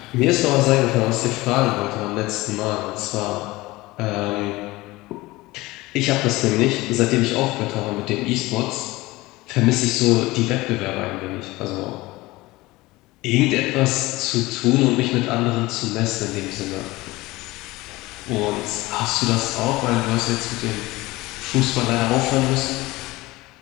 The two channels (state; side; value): quieter; right; 20.2 dB